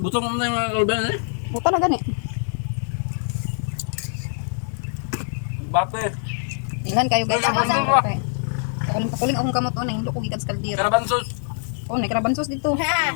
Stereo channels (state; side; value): silent; right; 63 dB below the other